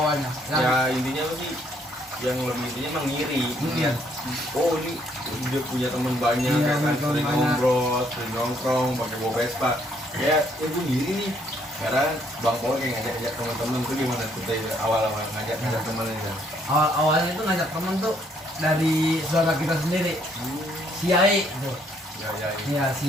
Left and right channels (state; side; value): normal; both; correlation 0.68